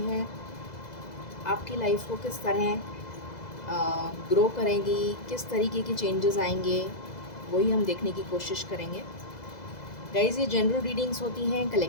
आपकी लाइफ को किस तरह ग्रो करेंगी, किस तरीके के चेंजेस आएंगे, वही हम देखने की कोशिश करेंगे। गाइज, ये जनरल रीडिंग्स होती हैं,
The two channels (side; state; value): right; late; 2.0 ms